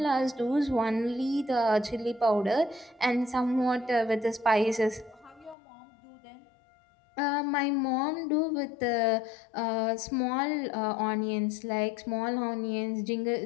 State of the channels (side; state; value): right; drops out; at 5.6 s